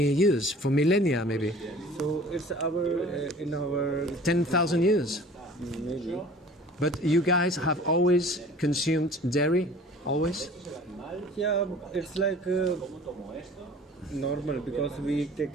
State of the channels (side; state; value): both; normal; correlation 0.46